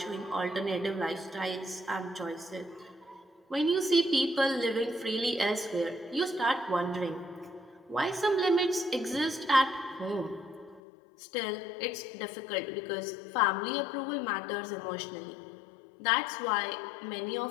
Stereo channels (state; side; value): drops out; right; at 10.8 s